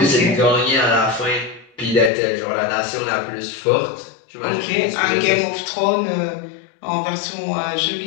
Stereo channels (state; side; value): drops out; right; at 2.1 s